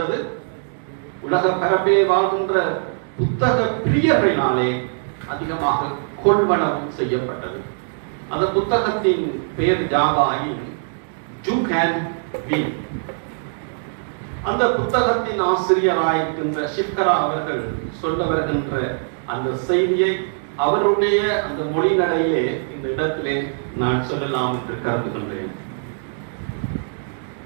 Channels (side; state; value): left; silent; digital silence